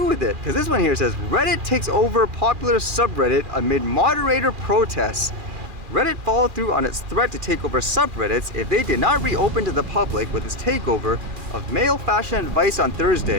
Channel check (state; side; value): late; left; 2.4 ms